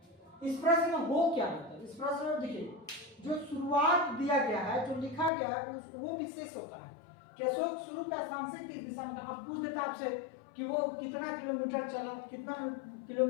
इस प्रश्न में हो क्या रहता है, इस प्रश्न में देखिए जो शुरुआत दिया गया है, जो लिखा गया है वो विशेष होता है कि अशोक शुरू का स्थान से किस दिशा में था। अब पूछ देता आपसे कि वो कितना किलोमीटर चला, कितना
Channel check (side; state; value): right; drops out; at 5.3 s